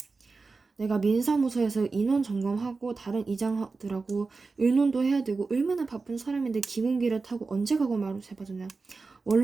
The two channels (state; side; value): quieter; left; 4.1 dB